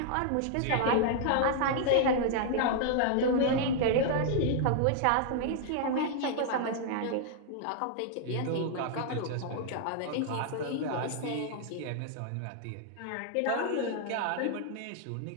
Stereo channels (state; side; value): different; both; correlation -0.01